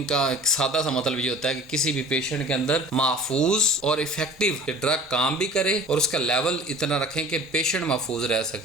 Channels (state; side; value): normal; both; correlation 0.45